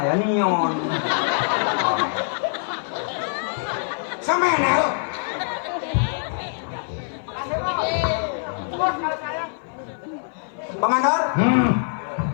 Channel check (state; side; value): silent; right; 56 dB below the other